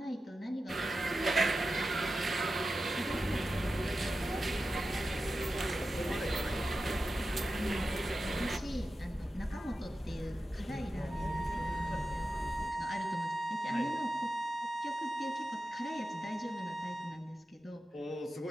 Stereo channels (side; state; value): both; normal; correlation 0.92